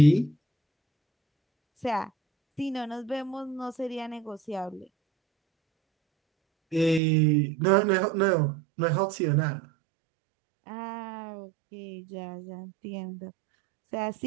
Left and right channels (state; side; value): drops out; left; at 7.0 s